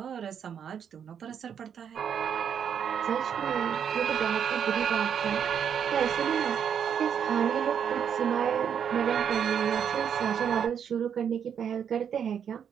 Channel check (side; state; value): left; quieter; 8.1 dB